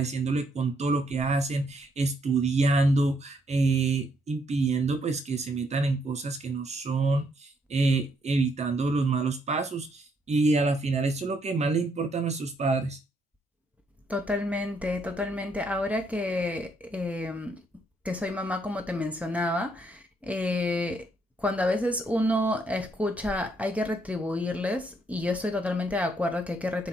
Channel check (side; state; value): both; normal; correlation 0.72